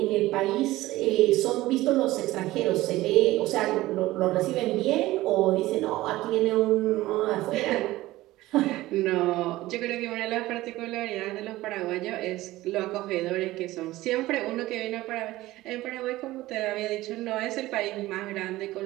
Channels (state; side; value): quieter; left; 17.3 dB